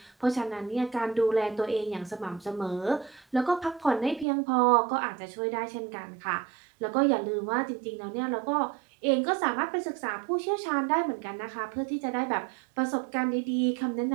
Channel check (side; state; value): left; drops out; at 4.2 s